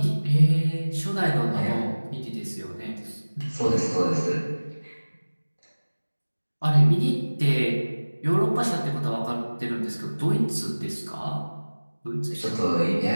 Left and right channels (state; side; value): inverted; both; correlation -1.00